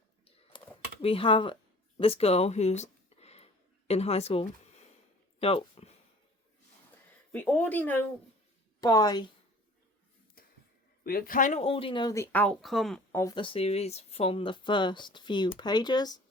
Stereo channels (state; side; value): normal; both; correlation 0.48